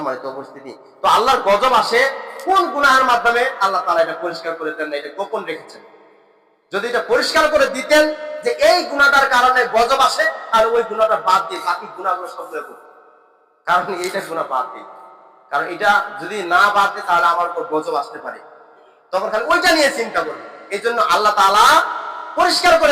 উপস্থিতি, তো আল্লাহর গজব আসে কোন গুনাহের মাধ্যমে? আল্লাহ তাআলা এটা পরিষ্কার করে দেন না, এটা গোপন রেখেছেন। যদি এটা পরিষ্কার করে দিতেন যে এই গুনাহটার কারণে গজব আসে, আর ওই গুনাহটা বাদ দিয়ে বাকি গুনাহগুলো সবগুলো করতেন। কারণ এইটা গুনাহ বাদ দিই, কারণ এটা যদি না বাদ দেয় তাহলে আমার উপর গজব আসতে পারে, তখন খালি ওইটা নিয়ে চিন্তা করবে। এই জন্য আল্লাহ তাআলা পরিষ্কার করে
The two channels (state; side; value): identical; both; correlation 1.00